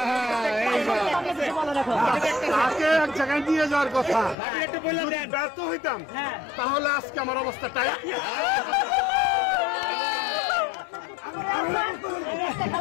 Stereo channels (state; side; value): drops out; right; at 4.4 s